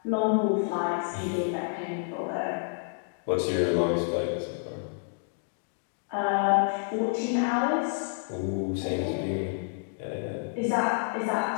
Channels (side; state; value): right; silent; digital silence